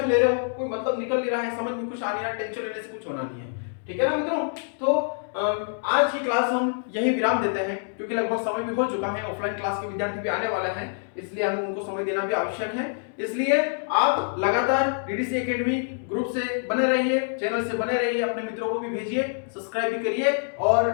ले रहे हो, कोई मतलब निकल नहीं रहा है, समझ में कुछ आ नहीं रहा, टेंशन लेने से कुछ होना नहीं है, ठीक है ना मित्रों। तो आज की क्लास हम यही विराम देते हैं, क्योंकि लगभग समय भी हो चुका है, ऑफलाइन क्लास के विद्यार्थी भी आने वाले हैं, इसलिए हमें उनको समय देना भी आवश्यक है। इसलिए आप लगातार डीडीसी एकेडमी ग्रुप से बने रहिए, चैनल से बने रहिए, अपने मित्रों को भी भेजिए, सब्सक्राइब भी करिए, और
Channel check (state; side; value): silent; right; 61 dB below the other